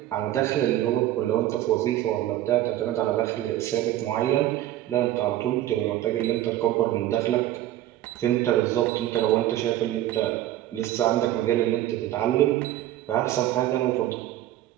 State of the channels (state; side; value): quieter; left; 13.6 dB